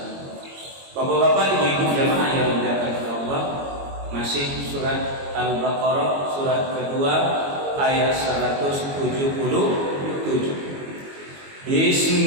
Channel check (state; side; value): late; left; 22 ms